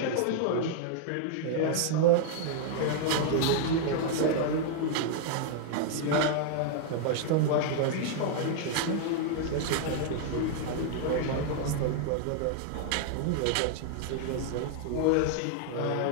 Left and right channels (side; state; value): both; different; correlation 0.00